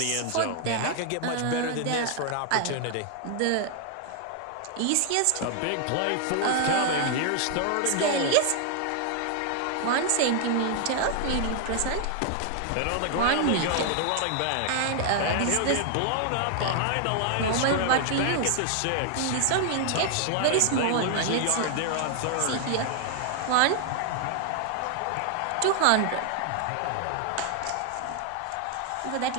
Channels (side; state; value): both; different; correlation 0.00